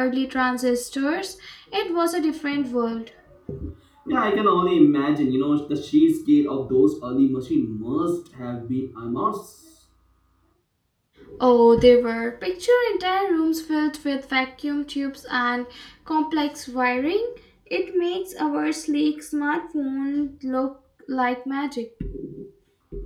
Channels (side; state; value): both; identical; correlation 1.00